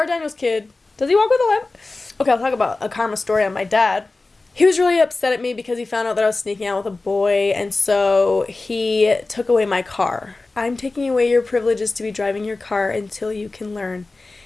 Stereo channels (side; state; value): right; quieter; 3.4 dB